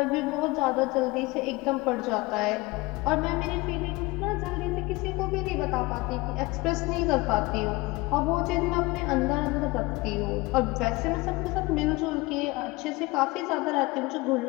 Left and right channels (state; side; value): quieter; right; 22.5 dB